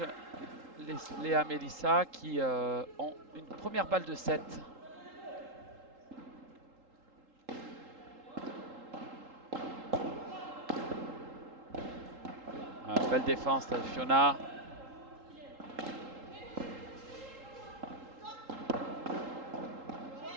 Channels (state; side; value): late; left; 3.8 ms